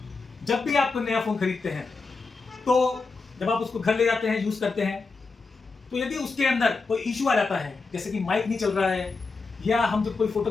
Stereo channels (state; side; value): quieter; right; 4.2 dB